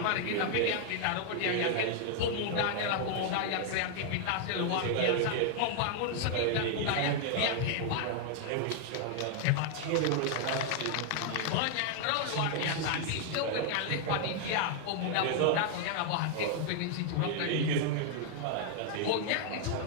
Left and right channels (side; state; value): both; different; correlation 0.00